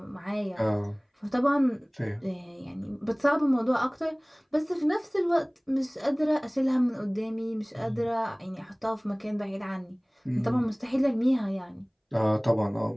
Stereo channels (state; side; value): identical; both; correlation 1.00